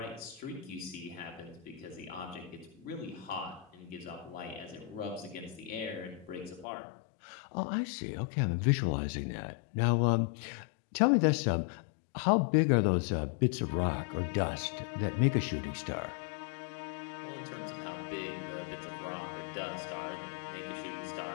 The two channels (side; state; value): right; drops out; at 6.7 s